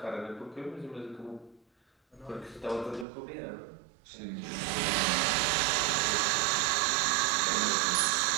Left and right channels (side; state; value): left; drops out; at 3.1 s